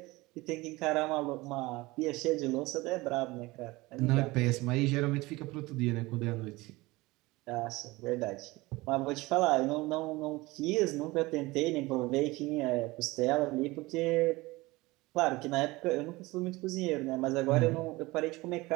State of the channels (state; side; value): quieter; left; 21.2 dB